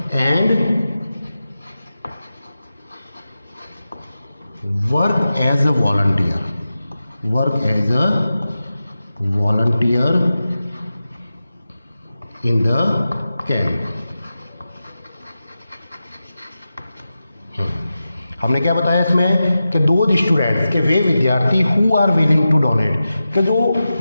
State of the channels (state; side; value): inverted; both; correlation -0.93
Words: and work as a volunteer in the camp. हमने क्या बताया इसमें कि दो स्टूडेंट्स के वे विद्यार्थी who are willing to donate, कि जो